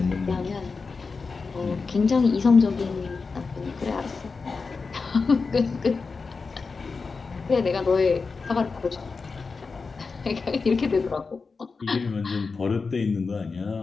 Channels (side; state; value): right; quieter; 4.5 dB